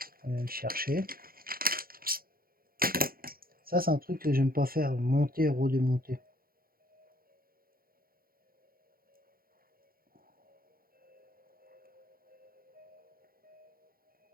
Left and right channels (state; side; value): late; left; 0.42 ms